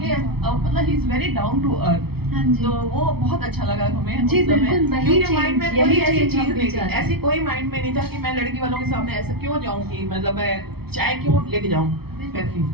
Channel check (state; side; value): late; left; 0.96 ms